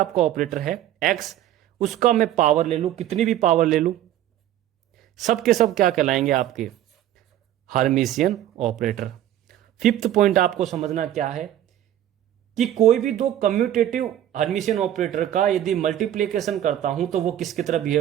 ऑपरेटर है एक्स, उसका मैं पावर ले लूं, कितनी भी पावर ले लूं, सब के सब क्या कहलाएंगे आपके? Hermitian operator. फिफ्थ पॉइंट आपको समझना क्या है कि कोई भी दो कम्यूटेटिव हर्मिशियन ऑपरेटर का यदि मल्टीप्लिकेशन करता हूं तो वो किसकी तरह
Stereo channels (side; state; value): left; quieter; 12.1 dB